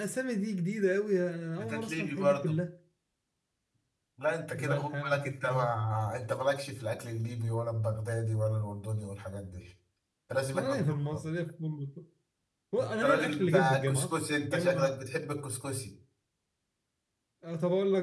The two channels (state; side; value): identical; both; correlation 1.00